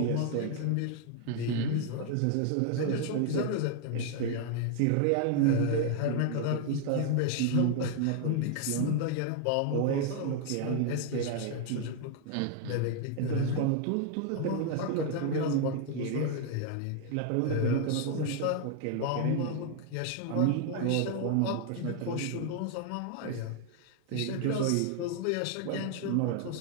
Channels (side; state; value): both; different; correlation 0.00